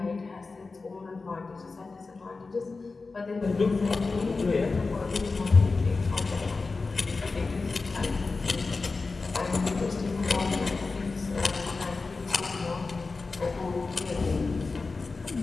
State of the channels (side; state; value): right; quieter; 4.0 dB